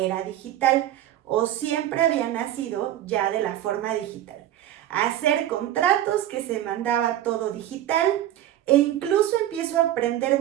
digital o siempre había nacido ya de la forma digital. Hacer contratos que se mandaba todo digital e incluso empiezo a aprender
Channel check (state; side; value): quieter; left; 12.6 dB